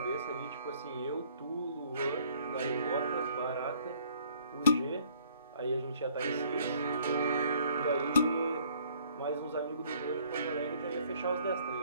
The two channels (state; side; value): inverted; both; correlation -0.60